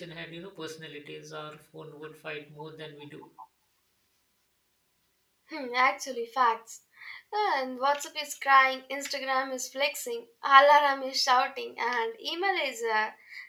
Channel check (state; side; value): identical; both; correlation 1.00